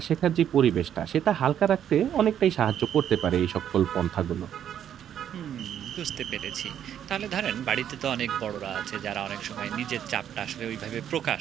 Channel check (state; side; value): quieter; left; 9.7 dB